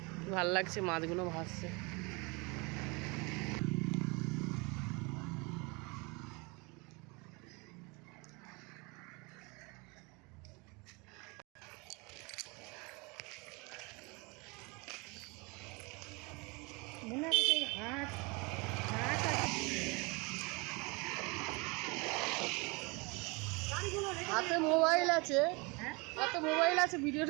ভাল লাগছে মাছগুলো ভাসছে। মনে হয় সেই হাঁস হাঁস হাতে মোবাইল আছে, হাতে মোবাইল আছে,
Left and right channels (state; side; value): quieter; left; 28.0 dB